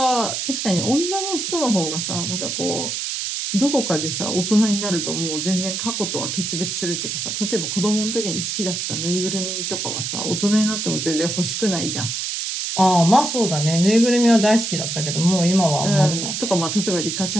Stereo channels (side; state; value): right; noise; hiss, 3 dB below the sound